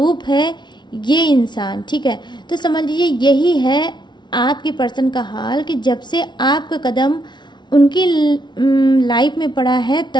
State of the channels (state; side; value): late; right; 0.21 ms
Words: है ये इंसान, ठीक है। तो समझ लीजिए यही है आपके पर्सन का हाल कि जब से आपका कदम उनकी लाइफ में पड़ा है